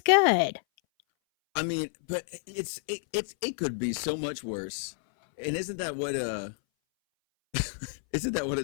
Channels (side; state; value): right; silent; 58 dB below the other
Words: good. I mean, but it could be so much worse. And isn't that what